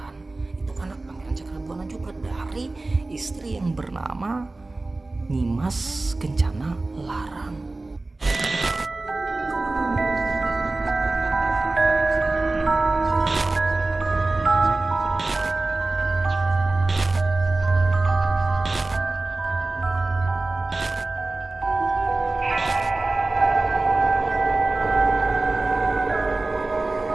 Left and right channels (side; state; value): left; quieter; 3.1 dB